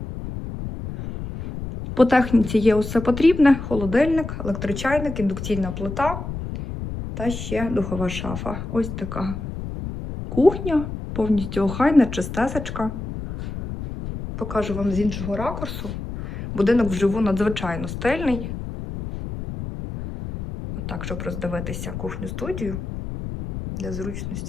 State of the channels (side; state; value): left; noise; rumble, 7 dB below the sound